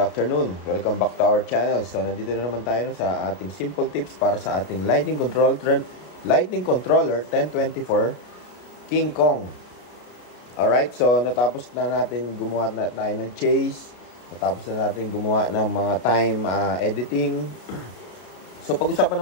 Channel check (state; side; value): late; right; 33 ms